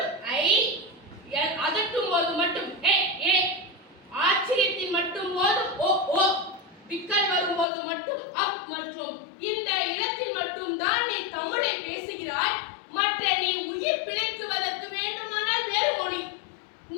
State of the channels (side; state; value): right; drops out; at 7.7 s